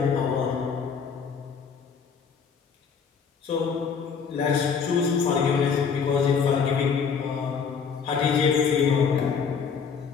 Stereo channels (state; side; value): quieter; right; 6.2 dB